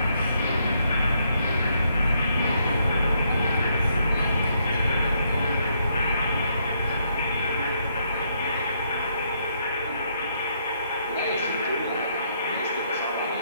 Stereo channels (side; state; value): both; inverted; correlation -0.74